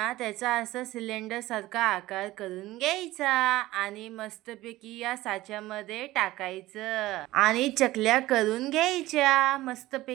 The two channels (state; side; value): quieter; left; 17.1 dB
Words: त्याचा असं सिलेंडरसारखा आकार करून घ्यायचा आणि मस्तपैकी या साच्यामध्ये टाकायचं आणि चकल्या करून घ्यायच्या